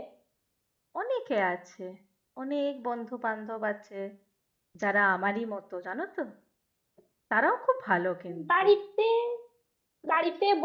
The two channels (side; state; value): both; identical; correlation 1.00